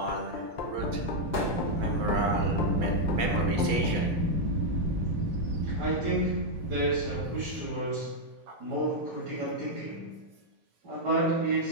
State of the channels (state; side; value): late; left; 5.0 ms